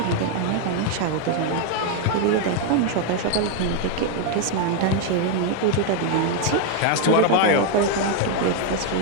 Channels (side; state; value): both; different; correlation 0.00